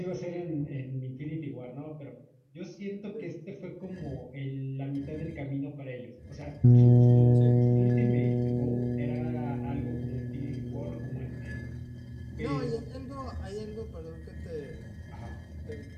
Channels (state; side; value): identical; both; correlation 1.00